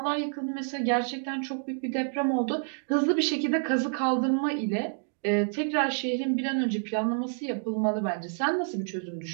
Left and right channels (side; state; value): left; silent; digital silence